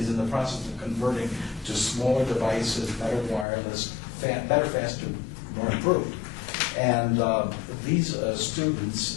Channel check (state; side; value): drops out; right; at 3.5 s